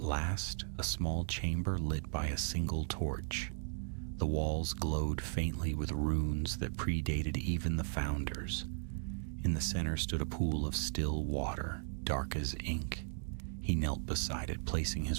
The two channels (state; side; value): silent; left; digital silence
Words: last, a small chamber lit by a single torch. The walls glowed faintly with runes that predated even the founders. In the center stood a pool of still water, dark as ink. He knelt beside it, placing